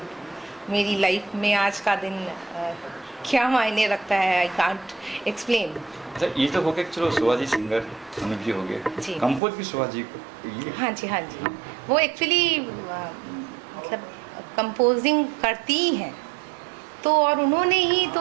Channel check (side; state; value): left; drops out; at 9.4 s